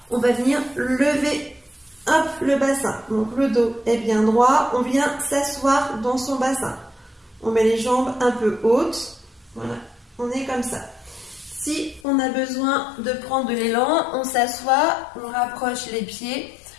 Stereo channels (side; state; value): right; drops out; at 12.1 s